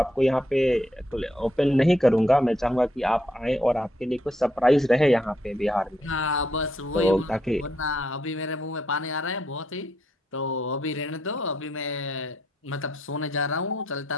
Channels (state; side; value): normal; both; correlation 0.76